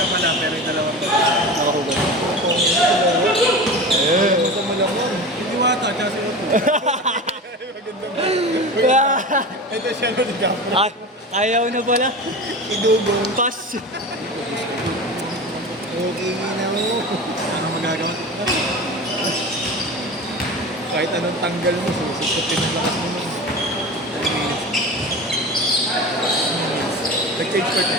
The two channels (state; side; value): normal; both; correlation 0.30